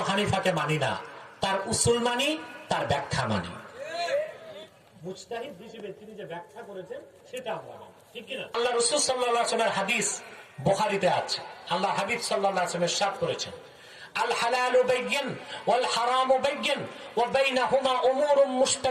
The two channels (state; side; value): identical; both; correlation 1.00